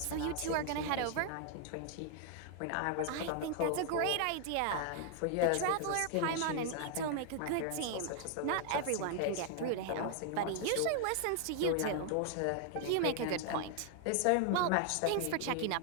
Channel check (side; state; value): both; different; correlation 0.00